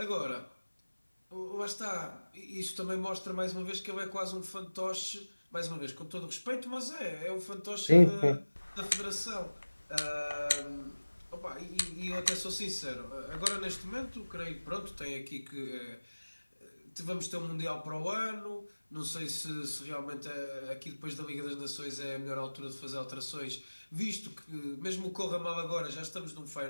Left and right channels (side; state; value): both; inverted; correlation -1.00